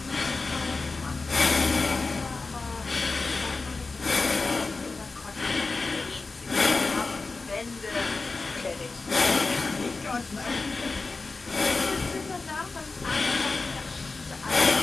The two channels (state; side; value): quieter; right; 3.9 dB